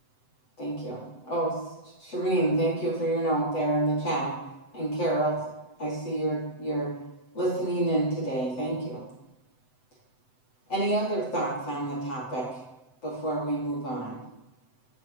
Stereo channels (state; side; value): late; right; 7.9 ms